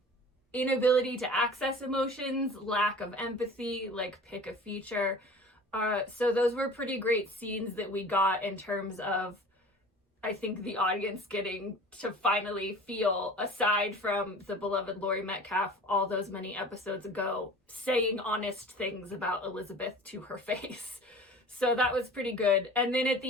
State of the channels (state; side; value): normal; both; correlation 0.41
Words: inability to access emotions, lack of empathy, like pick a feature. So those were pretty great scenes that we got in terms of I think the audience getting to finally feel, aside from the beloved Laurie Metcalf all those many episodes ago, saying honest things about Elizabeth to her face. So that was pretty good. And then at